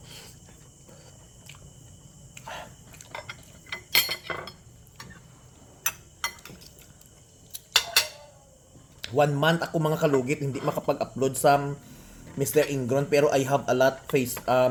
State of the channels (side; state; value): both; identical; correlation 1.00